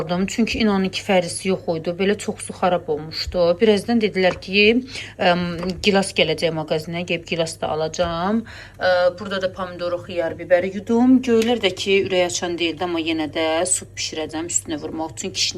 Çünki inanın ki, fərisi yox idi. Belə çoxsu xarab olmuşdu. Birazdan dedilər ki, gilas gələcək mağazinə, gəlib gilas da alacağım. Burada da pomidoru, xiyar, biberi yudum. Göylər də ki, ürək açan deyildi, amma yenə də su bişirəcəm üstünə vurmaq üçün.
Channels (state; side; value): identical; both; correlation 1.00